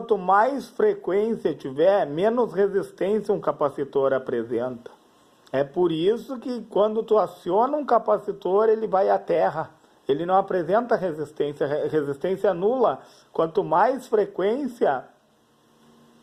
mais frequência tiver, menos resistência um capacitor apresenta. É por isso que quando tu aciona um capacitor, ele vai à terra. Ele não apresenta resistência nula. Quanto mais frequência,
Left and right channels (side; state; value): both; identical; correlation 1.00